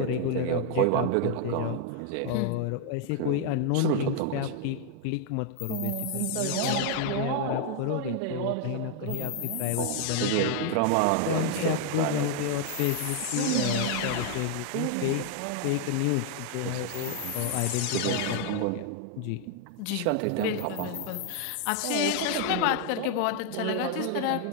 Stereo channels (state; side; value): different; both; correlation 0.00